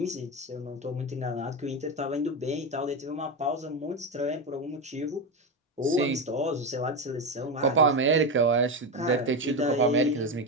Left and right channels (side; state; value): both; normal; correlation 0.15